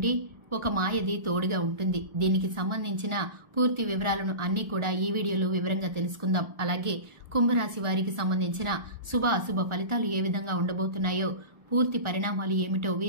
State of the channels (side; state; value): left; late; 1.4 ms